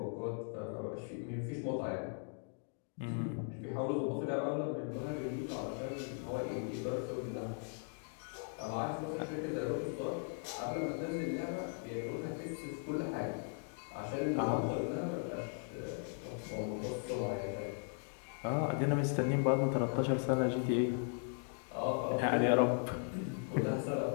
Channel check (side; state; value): right; silent; 52 dB below the other